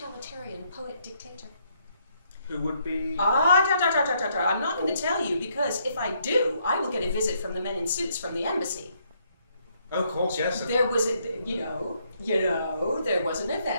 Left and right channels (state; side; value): inverted; both; correlation -0.72